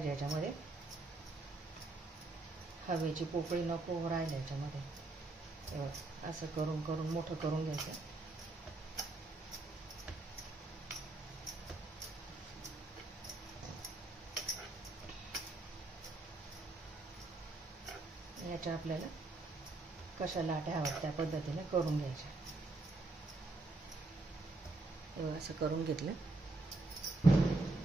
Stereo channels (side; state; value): left; quieter; 3.1 dB